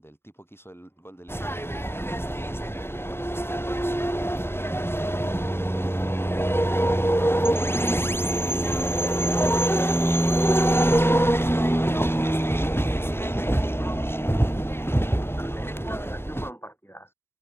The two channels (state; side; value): late; right; 0.11 ms